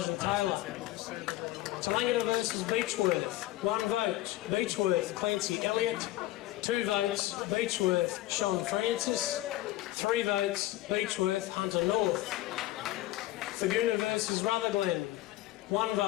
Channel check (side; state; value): right; quieter; 16.3 dB